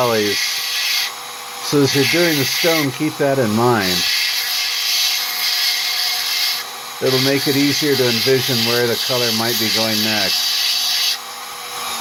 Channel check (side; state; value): both; identical; correlation 1.00